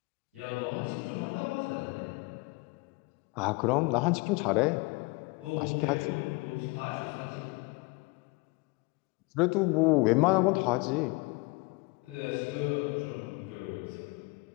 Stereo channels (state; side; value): quieter; right; 26.4 dB